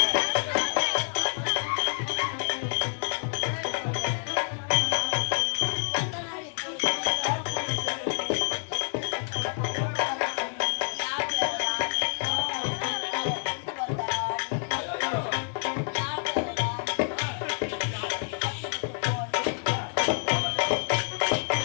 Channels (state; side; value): silent; right; digital silence